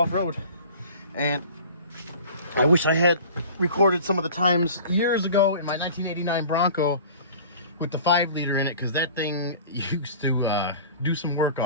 and I wish I had recorded some of the times years ago in my 1989 Bronco with the 5-liter in it, because that thing used to do some work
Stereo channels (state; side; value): inverted; both; correlation -0.42